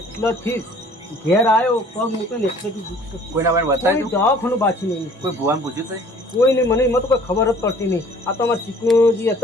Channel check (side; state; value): both; normal; correlation 0.53